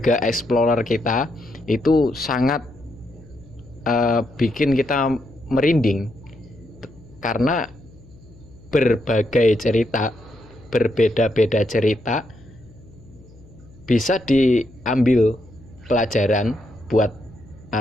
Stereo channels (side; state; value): left; noise; hum, 24 dB below the sound